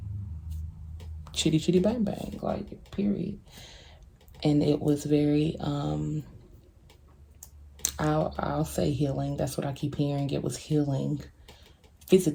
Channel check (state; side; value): identical; both; correlation 1.00